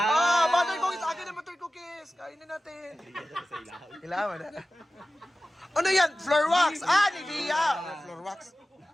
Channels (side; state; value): both; normal; correlation 0.95